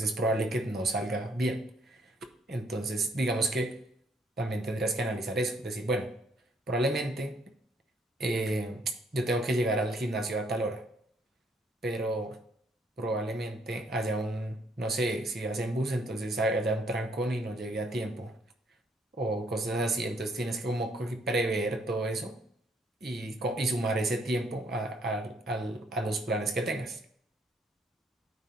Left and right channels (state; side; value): normal; both; correlation 0.68